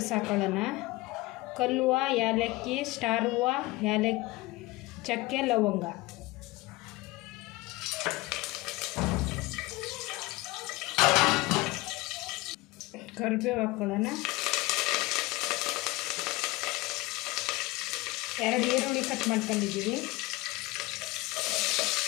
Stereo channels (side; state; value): right; quieter; 21.1 dB